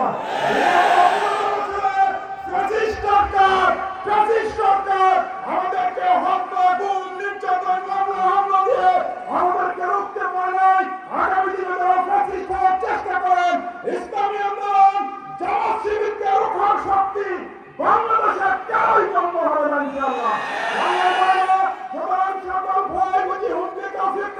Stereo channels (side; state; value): both; identical; correlation 1.00